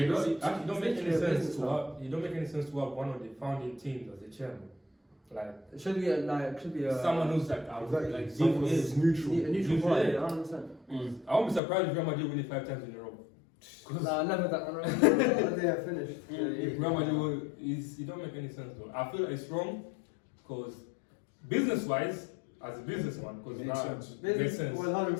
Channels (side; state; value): right; drops out; at 11.6 s